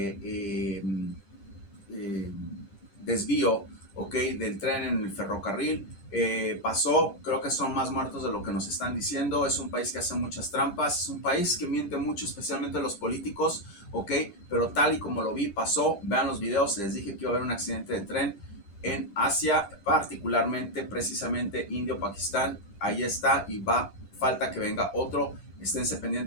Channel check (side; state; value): right; late; 10 ms